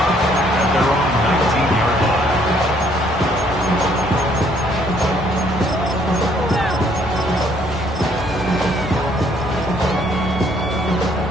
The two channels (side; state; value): both; normal; correlation 0.65